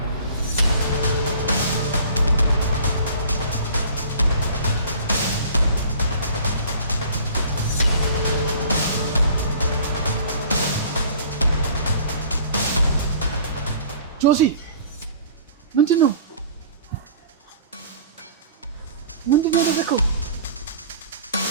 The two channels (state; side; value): inverted; both; correlation -0.47